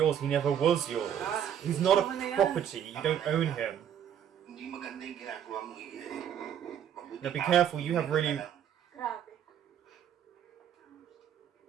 he never was yours. He's not a property, you don't own him. Hindi maganda yung ginagawa mo, Mabuti Now be pa, careful, you have really... Grabe.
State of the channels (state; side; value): quieter; left; 9.5 dB